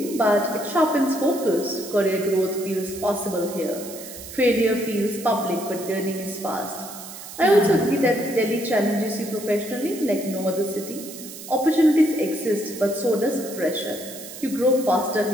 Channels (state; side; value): noise; right; hiss, 13 dB below the sound